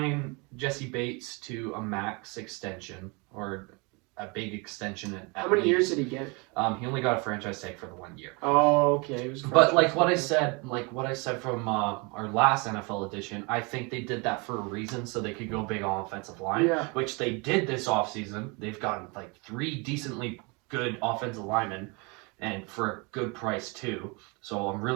Jesse Bates to a max extension or a big extension at How many least. years did he get? He only got a franchise tag for the 1 year. Oh, okay. It was But like what I said from our last NFL edition, I think they did that for a reason, so they could go big on offensive line, Yeah. which they did this offseason. They've gotten like 3 decently good offensive linemen, and for a good price too. So I'm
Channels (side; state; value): left; quieter; 29.6 dB